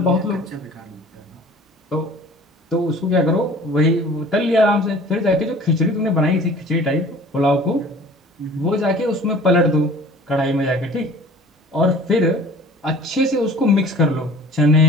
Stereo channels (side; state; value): both; normal; correlation 0.46